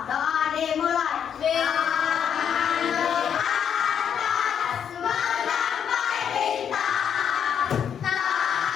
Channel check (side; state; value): right; quieter; 8.2 dB